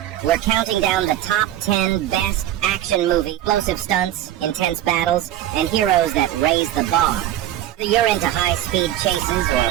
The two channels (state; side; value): quieter; left; 12.7 dB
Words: we're counting down the top 10 best action movie, explosive stunts, intense battles, and heroes that raise the bar. Whether you're into high-speed chases